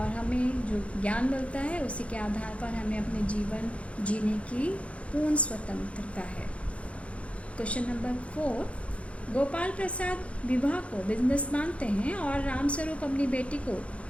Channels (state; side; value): late; right; 0.062 ms